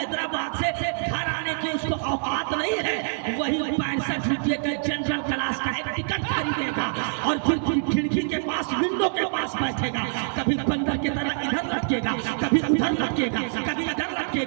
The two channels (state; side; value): silent; left; digital silence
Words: से घर आने की उसको औकात नहीं है, वही 65 रुपये का जनरल क्लास का एक टिकट खरीदेगा और फिर खिड़की के पास, विंडो के पास बैठेगा। कभी बंदर की तरह इधर लटकेगा, कभी उधर लटकेगा, कभी इधर